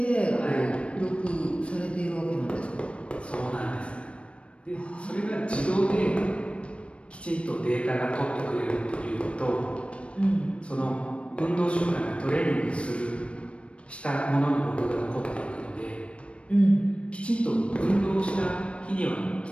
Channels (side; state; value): right; late; 0.060 ms